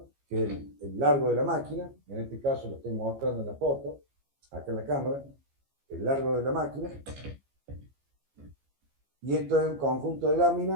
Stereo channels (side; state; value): left; late; 15 ms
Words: que es el largo de la máquina. En este caso lo estoy mostrando en la foto, acá en la cámara, el largo de la máquina. Y esto es un conjunto de